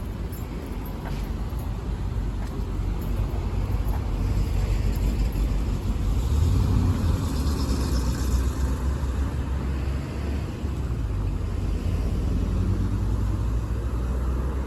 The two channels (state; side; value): identical; both; correlation 1.00